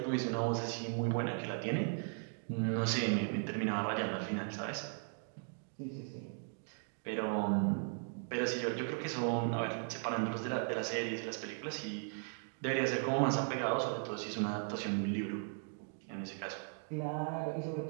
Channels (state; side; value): silent; left; 53 dB below the other